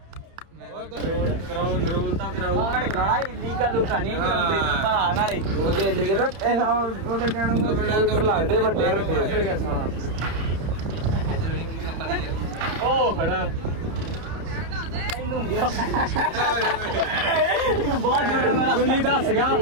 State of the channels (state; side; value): late; left; 30 ms